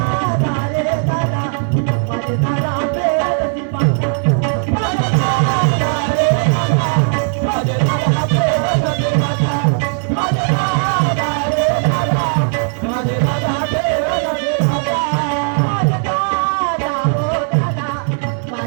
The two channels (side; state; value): left; silent; 68 dB below the other